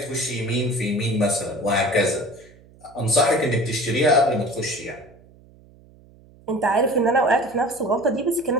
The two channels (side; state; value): right; noise; hum, 26 dB below the sound